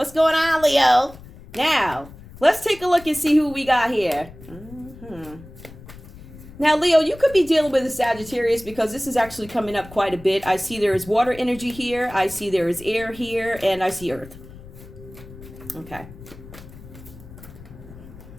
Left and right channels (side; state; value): left; noise; rumble, 18 dB below the sound